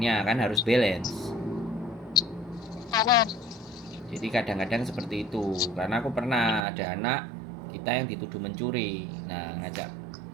kan harus balance. Jadi kadang-kadang seperti itu. Karena aku pernah ada anak kita yang dituduh mencuri. Nah,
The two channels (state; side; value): drops out; left; at 6.6 s